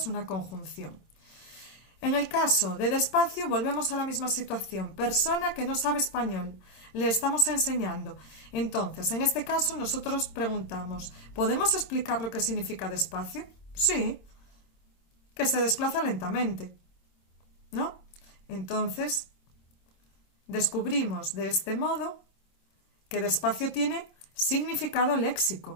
una conjunción. En el caso de despacio, volvemos a la misma situación. Persona que no sabe español. Le estamos enseñando. Entonces, en este caso, nosotros preguntamos, ¿podemos explicar lo que significa despacio? Sí, que se desplaza lentamente, ¿no? Entonces, descubrimos de este modo que despacio tiene significado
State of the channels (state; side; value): late; right; 26 ms